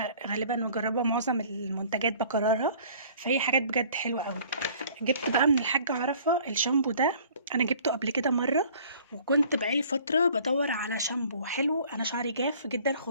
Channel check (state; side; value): inverted; both; correlation -0.53